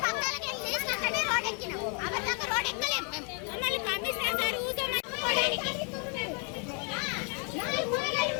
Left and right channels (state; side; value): quieter; right; 37.7 dB